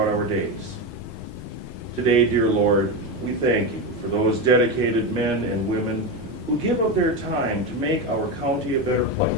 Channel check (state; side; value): normal; both; correlation 0.15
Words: our days. Today, dear Lord, we thank you for those dedicated men and women who give of their time to make our county a better